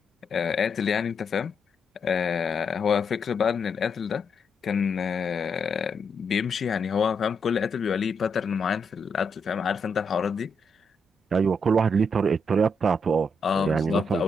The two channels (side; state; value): both; normal; correlation 0.79